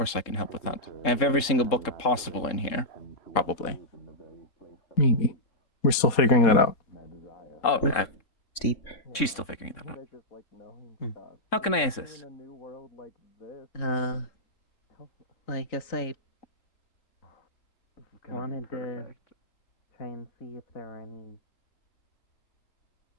I can help with that. I have every single book possible in here. Probably. Maybe. We're still figuring that out. Oh, Oof. Steep. she's still figuring that out. How can I assist? I guess I wanted to try and see if there are any,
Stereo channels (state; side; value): late; right; 3.7 ms